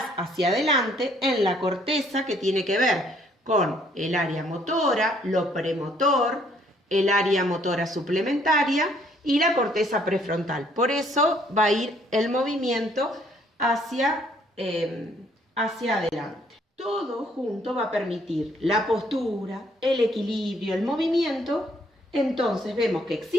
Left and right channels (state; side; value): normal; both; correlation 0.65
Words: hacia adelante en la corteza, que tiene que ver con el área motora, lo premotor, el área motora suplementaria y la corteza prefrontal. Por eso va a ir el movimiento hacia hacia adelante. Todo junto va a permitir la postura, el equilibrio, el movimiento. Entonces vemos que